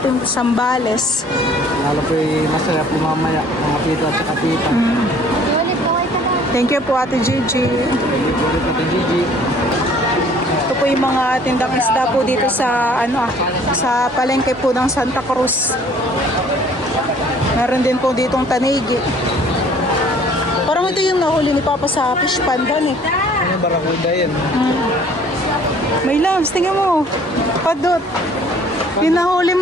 Sambales. Lalo po masaya po mamaya mga tito at saka tita. Thank you po Ate Gigi. Ulit Ate Gigi. Ito po yung mga tindang isda po dito sa sa palengke po ng Santa Cruz. Meron din po ditong tanigi. Parang ito yung nahuli ni Papa sa fish pond eh. Ano barakuda yan? May lambs, tingnan mo. Padot. Yung nahuli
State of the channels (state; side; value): normal; both; correlation 0.55